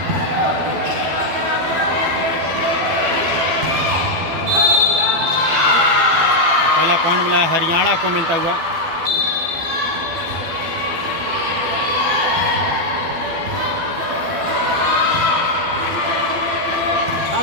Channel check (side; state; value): left; late; 12 ms